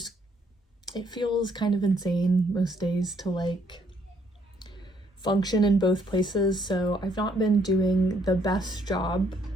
feels kind of insane most days to like function in both places, so I've not been doing the best job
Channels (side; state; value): both; normal; correlation 0.68